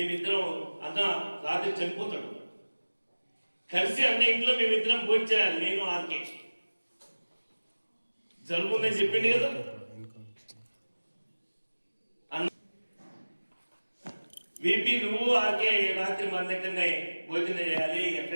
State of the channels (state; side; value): inverted; both; correlation -1.00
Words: అన్న రాత్రి చనిపోతాడు కలిసి అన్న ఇంట్లో మేమిద్దరం భోంచేయాలి. నేను ఆర్కే జరుగుతుందని చెప్పింది కదా. వీపీ నువ్వు ఆర్కే రాత్రి మన దగ్గరనే భోజనం చేయాలి,